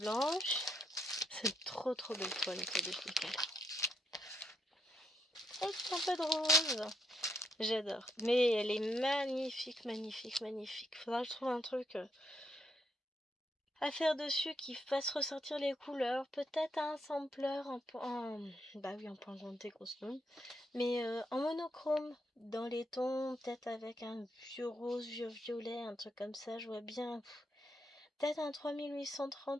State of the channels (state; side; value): normal; both; correlation 0.77